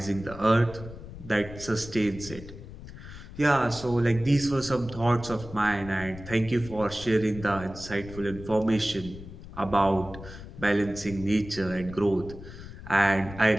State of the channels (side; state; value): left; noise; rumble, 14 dB below the sound